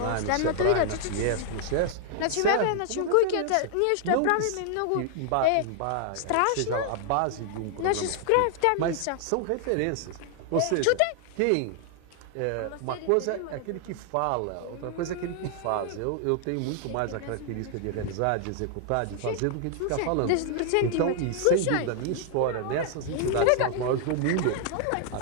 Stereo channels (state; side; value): different; both; correlation 0.00